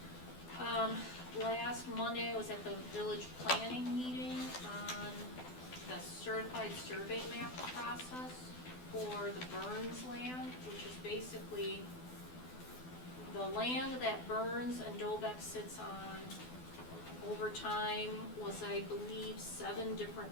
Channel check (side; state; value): right; late; 12 ms